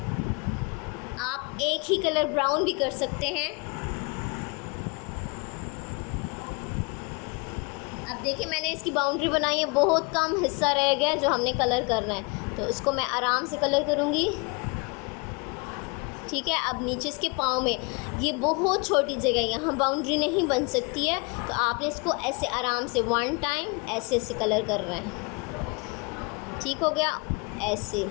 आप एक ही कलर ब्राउन भी कर सकते हैं। अब देखिए मैंने इसकी बाउंड्री बनाई है, बहुत कम हिस्सा रह गया जो हमने कलर करना है, तो इसको मैं आराम से कलर करूँगी, ठीक है। अब नीचे इसके पाँव में ये बहुत छोटी जगह है, यहाँ बाउंड्री नहीं बन सकती है, तो आपने इसको ऐसे आराम से 1 टाइम ऐसे ऐसे कलर करना है, ठीक हो गया। ऐसे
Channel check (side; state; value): right; quieter; 30.6 dB